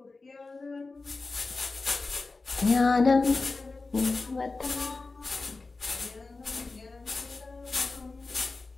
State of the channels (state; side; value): quieter; right; 3.7 dB